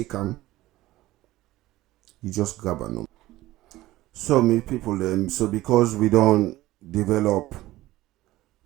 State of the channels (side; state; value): left; quieter; 16.9 dB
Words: them, you just grab them. So many people them. So because we don't develop,